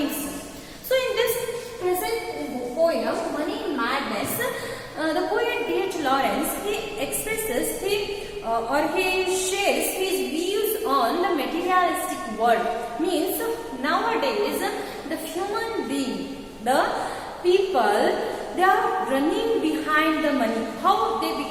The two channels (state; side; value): identical; both; correlation 1.00